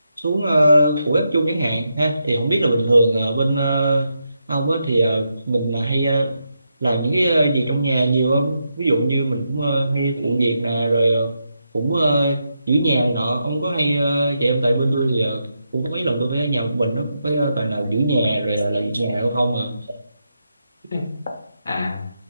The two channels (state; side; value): inverted; both; correlation -0.84